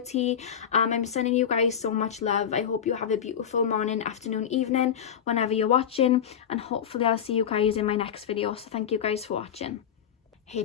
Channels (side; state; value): right; quieter; 8.4 dB